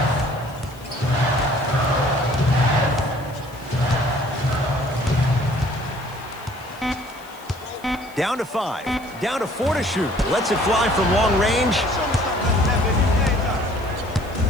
Down to 5. Down to 4 to shoot. Lets it fly from long range.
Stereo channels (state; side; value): noise; left; hiss, 25 dB below the sound